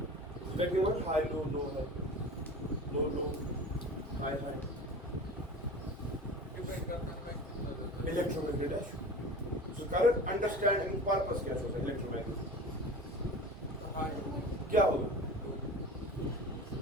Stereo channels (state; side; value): normal; both; correlation 0.35